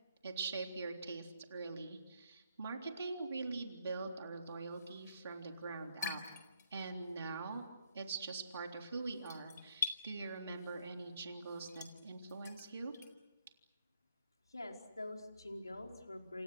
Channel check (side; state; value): both; inverted; correlation -0.74